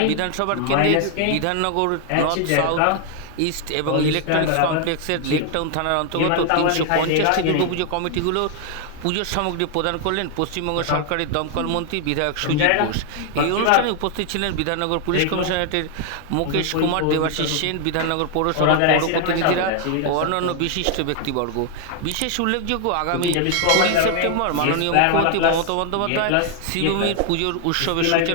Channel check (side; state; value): both; different; correlation 0.00